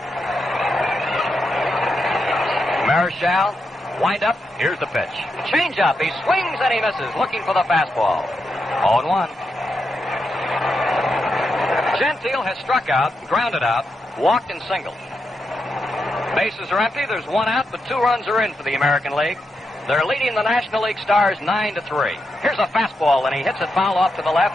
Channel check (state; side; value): normal; both; correlation 0.85